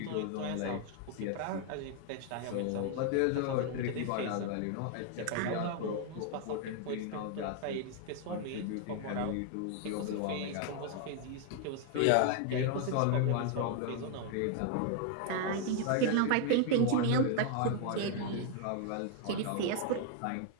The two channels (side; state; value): both; different; correlation 0.00